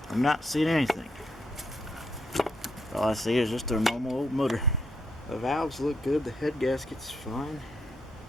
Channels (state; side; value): normal; both; correlation 0.77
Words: I'm not seeing anything. All I see is just a normal old motor. The valves look good, the head gasket's fine.